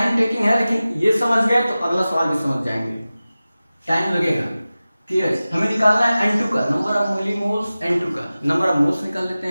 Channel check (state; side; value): inverted; both; correlation -0.96